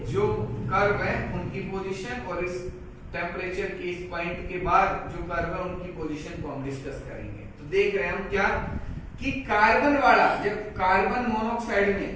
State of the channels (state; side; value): identical; both; correlation 1.00